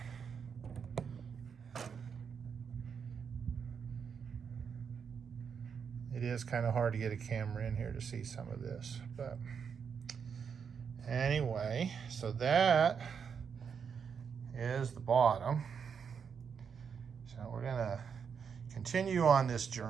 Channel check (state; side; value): quieter; left; 6.7 dB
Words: It is kind of hard to get a camera in here to see some of this, but anyway, so that is the bottom. So we're gonna continue on this